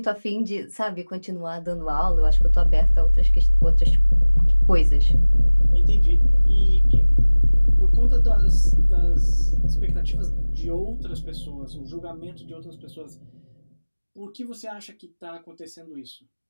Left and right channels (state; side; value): inverted; both; correlation -1.00